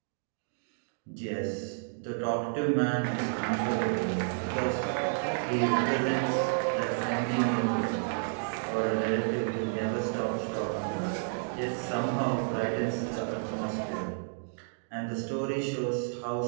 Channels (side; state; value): left; silent; digital silence